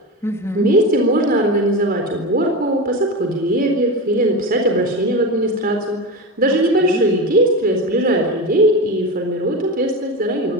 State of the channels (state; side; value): normal; both; correlation 0.21